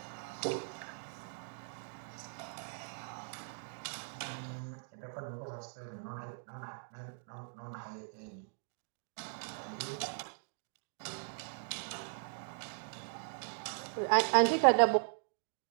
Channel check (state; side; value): silent; left; digital silence